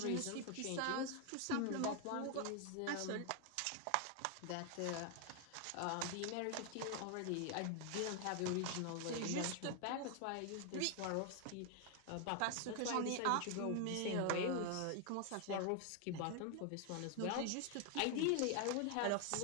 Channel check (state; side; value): different; both; correlation 0.00